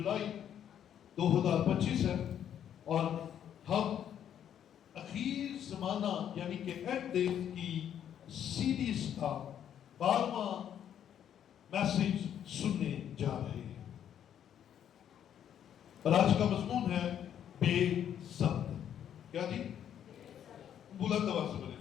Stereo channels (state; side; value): quieter; right; 9.7 dB